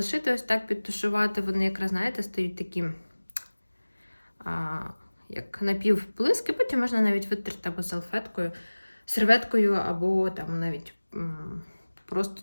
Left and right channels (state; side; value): inverted; both; correlation -1.00